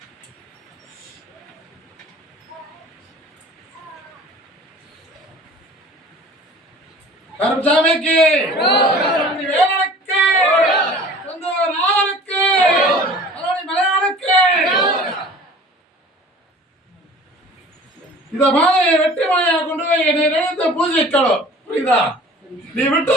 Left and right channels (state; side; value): normal; both; correlation 0.45